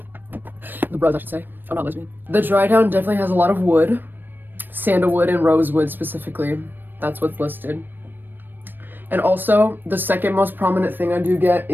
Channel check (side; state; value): left; late; 0.094 ms